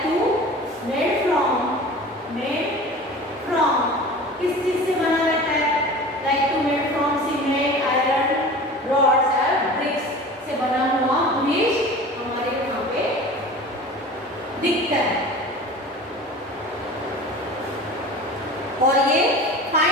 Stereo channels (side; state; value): both; normal; correlation 0.38